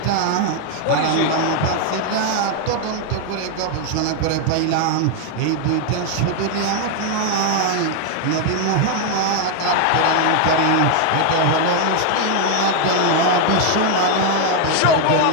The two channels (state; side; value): different; both; correlation 0.01